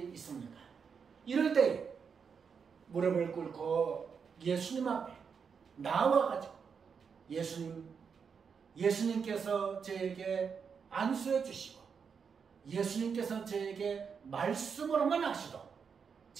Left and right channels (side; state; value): left; quieter; 6.3 dB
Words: 있습니까? 이럴 때 무릎을 꿇고 예수님 앞에 나와가지고 예수님께서 저에게 안수해 주시고 예수님께서 저에게 말씀으로만 하시도